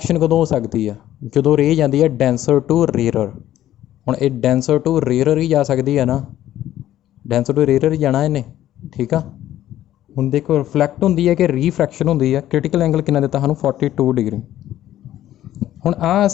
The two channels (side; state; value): right; quieter; 12.9 dB